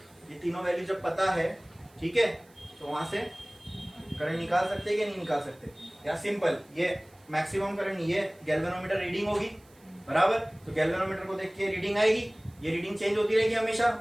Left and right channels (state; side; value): noise; right; hiss, 30 dB below the sound